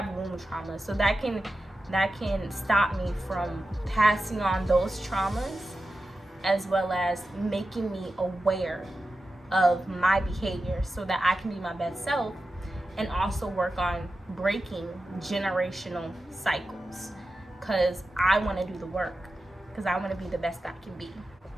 womb traumas. So that can stop me from passing on those traumas, as well as making me aware of my behavior so that I can be my best self, and also work on breaking generational cycles. Because I want to do the work, because I want to be the best I can be.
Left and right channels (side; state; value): both; normal; correlation 0.92